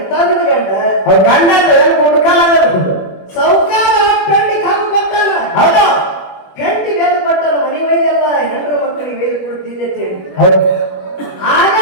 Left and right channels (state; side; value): late; right; 21 ms